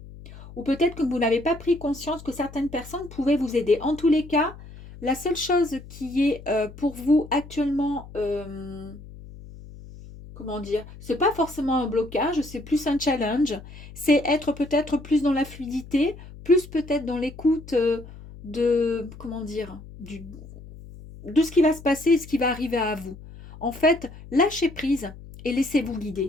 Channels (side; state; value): left; noise; hum, 17 dB below the sound